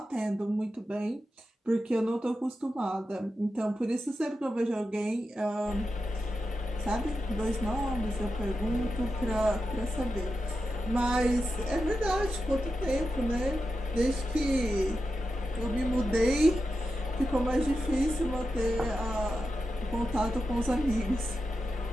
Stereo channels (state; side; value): normal; both; correlation 0.90